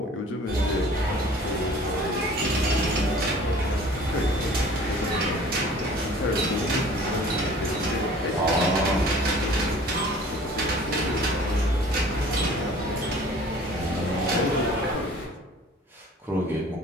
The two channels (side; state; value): both; normal; correlation 0.48